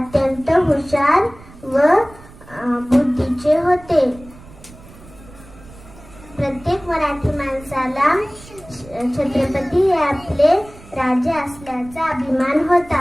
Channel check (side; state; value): right; noise; rumble, 21 dB below the sound